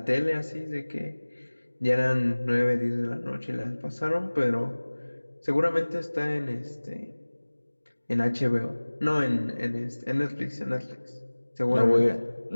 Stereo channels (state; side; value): inverted; both; correlation -1.00